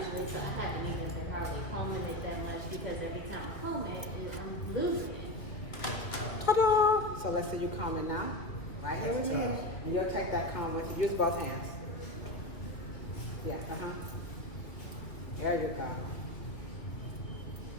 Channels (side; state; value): right; late; 2.2 ms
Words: usually. So I haven't even been hardly combing it that much because every time I comb it, I'm losing it. Ta-da! So let's say you comb it now, right here with me. And you'll take that comb with you. Use both hands. Yeah, There you go.